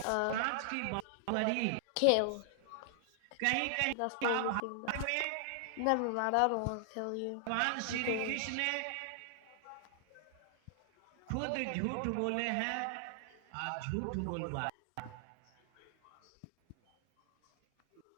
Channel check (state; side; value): different; both; correlation 0.00